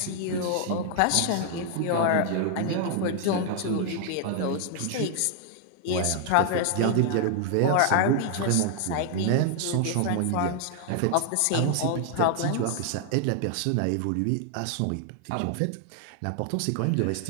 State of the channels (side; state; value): both; different; correlation 0.00